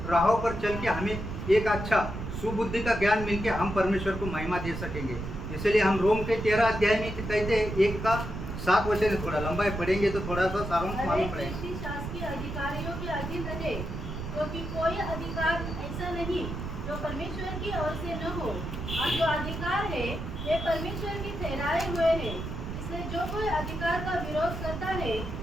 राहों पर चल के हमें एक अच्छा सुबुद्धि का ज्ञान मिलके हम परमेश्वर को महिमा दे सकेंगे. इसलिए हम रोम के 13 अध्याय में कहते हैं 1 का 7 वचन है. थोड़ा लंबा पढ़ेंगे तो थोड़ा सा सारांश मालूम पड़ेगा. व्यक्ति शासकीय अधिकारियों के अधीन रहे, क्योंकि कोई अधिकार ऐसा नहीं जो परमेश्वर की ओर से न हो, और जो अधिकार है वे परमेश्वर के ठहराए हुए हैं. इसलिए जो कोई अधिकार का विरोध करता है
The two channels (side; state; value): right; noise; rumble, 6 dB below the sound